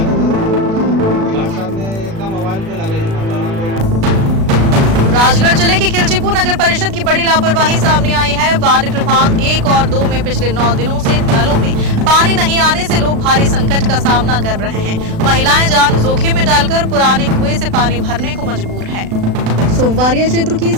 गार्ड साहब ने एकदम मोबाइल पे लगे। राजगढ़ जिले की खिलचीपुर नगर परिषद की बड़ी लापरवाही सामने आई है। वार्ड क्रमांक 1 और 2 में पिछले 9 दिनों से नलों में पानी नहीं आने से लोग भारी संकट का सामना कर रहे हैं। महिलाएं जान जोखिम में डालकर पुराने कुएं से पानी भरने को मजबूर है। सोमवारिया क्षेत्र की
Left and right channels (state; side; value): late; left; 36 ms